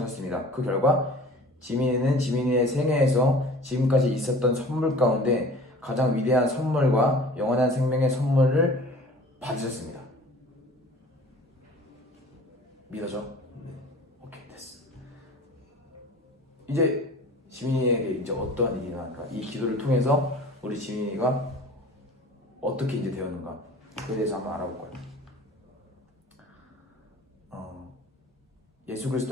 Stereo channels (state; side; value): normal; both; correlation 0.45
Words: 그 결과 지민이는 지민이의 생애에서 지금까지 있었던 선물 가운데 가장 위대한 선물과 영원한 생명의 선물을 받으셨습니다. 믿어져? 오케이, 됐어. 이제 지민이에게 이제 어떠한 일이 일어날까? 이 기도를 통해서 우리 지민이가 어떻게 이제 되었는가 그에 대해서 한번 알아볼 거예요. 예수